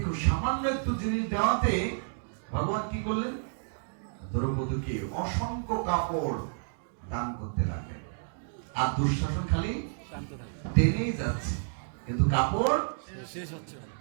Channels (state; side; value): silent; left; digital silence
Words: সামান্য একটু জিনিস দেওয়াতে ভগবান কি করলেন? দ্রৌপদীকে অসংখ্য কাপড় দান করতে লাগলেন। আর দুঃশাসন খালি টেনেই যাচ্ছে, কিন্তু কাপড় শেষ হচ্ছে না।